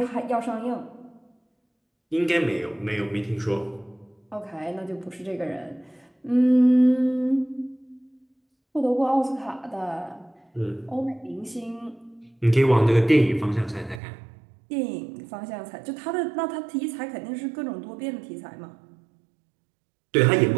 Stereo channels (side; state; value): left; drops out; at 14.0 s